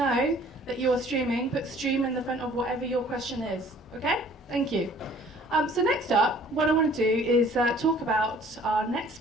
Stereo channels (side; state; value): both; normal; correlation 0.53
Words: that you're streaming. Put stream in the front of whatever your question is. Okay? Thank you. So next up, what I want to do is talk about our next